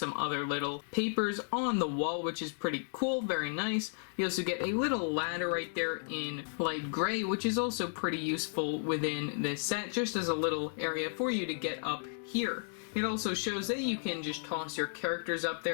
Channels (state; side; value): silent; right; digital silence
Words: other little papers on the wall, which is pretty cool, very nice. You also get a little ladder right there in light gray, which is also pretty useful within this set, just as a little area for you to get up here. It also shows that you can just toss your characters up